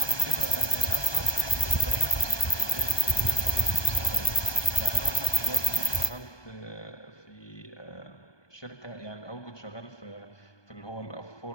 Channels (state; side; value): late; right; 1.2 ms